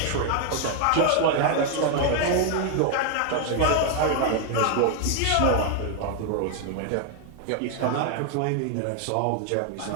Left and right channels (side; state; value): both; different; correlation 0.00